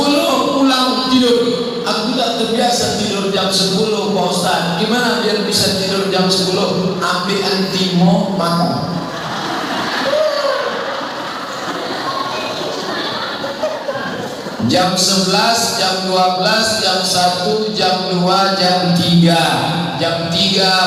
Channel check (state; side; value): identical; both; correlation 1.00